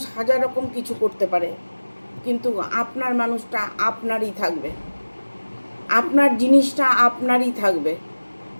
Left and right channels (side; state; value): both; inverted; correlation -1.00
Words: হাজার রকম কিছু করতে পারে, কিন্তু আপনার মানুষটা আপনারই থাকবে, আপনার জিনিসটা আপনারই থাকবে।